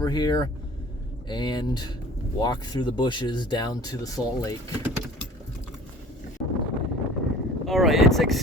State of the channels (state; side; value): normal; both; correlation 0.45